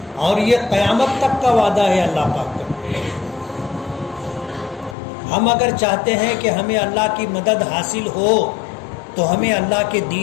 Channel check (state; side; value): drops out; right; at 5.0 s